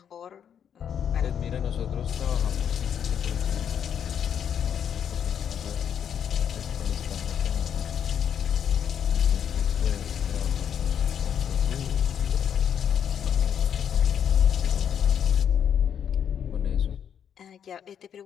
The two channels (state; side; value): quieter; right; 8.5 dB